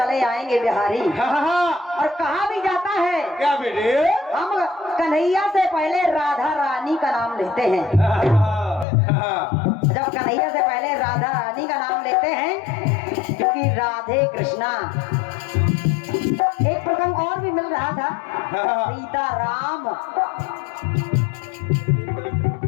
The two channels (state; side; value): drops out; right; at 8.8 s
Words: आएंगे बिहारी, और कहा भी जाता है क्या बेटे? हम कन्हैया से पहले राधा रानी का नाम लेते हैं। जब कन्हैया से पहले राधा रानी का नाम लेते हैं, क्योंकि राधे कृष्णा। एक प्रसंग और भी मिल रहा था, सीता राम।